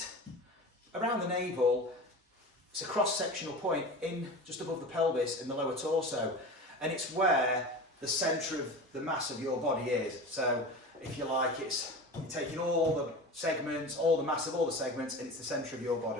around the navel. It's a cross-sectional point in just above the pelvis in the lower torso, and it's where the centre of the mass of your body is. So if you like, it's you're taking all the segments, all the mass of all the segments, and it's the centre of your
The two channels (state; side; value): normal; both; correlation 0.32